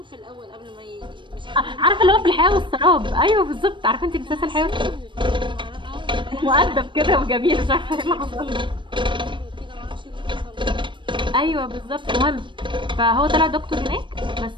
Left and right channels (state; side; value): late; left; 0.23 ms